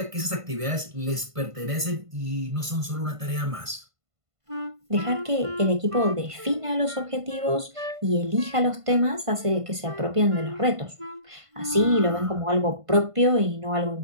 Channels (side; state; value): left; late; 1.5 ms